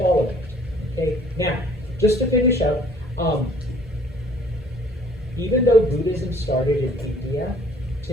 it. Okay, now, just to finish up, even though Buddhism started in India,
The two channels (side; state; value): both; normal; correlation 0.56